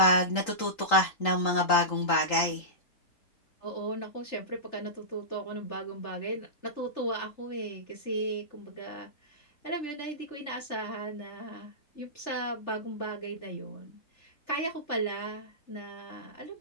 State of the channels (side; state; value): right; late; 3.8 ms